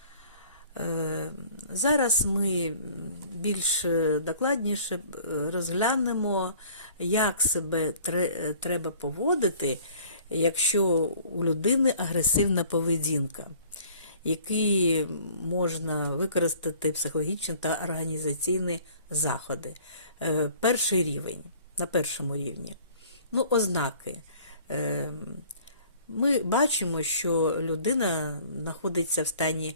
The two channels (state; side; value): inverted; both; correlation -0.52